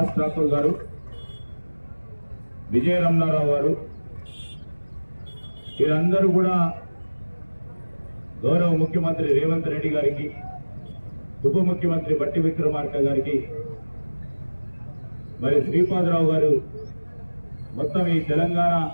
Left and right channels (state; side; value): inverted; both; correlation -1.00